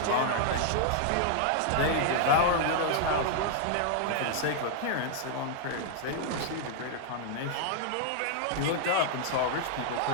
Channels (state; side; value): different; both; correlation -0.01